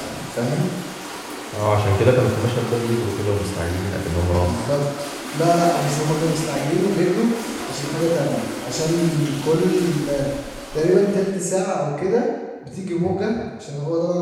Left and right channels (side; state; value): both; identical; correlation 1.00